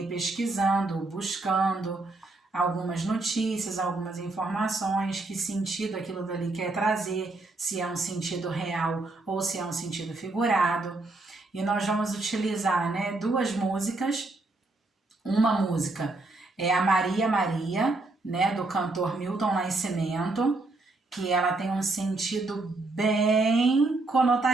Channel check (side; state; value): left; quieter; 3.1 dB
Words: pesquisando, buscando, algumas notícias, algumas informações, que sentido aquilo dali quer trazer, se é um sentido real ou se é um sentido figurado. E nós vamos utilizar, né, duas músicas. Uma música é a Maria Maria, né, do cantor Milton Nascimento, que ela tem um sentido bem